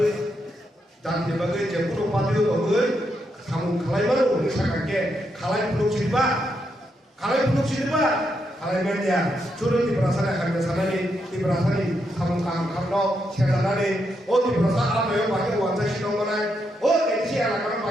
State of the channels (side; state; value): both; normal; correlation 0.81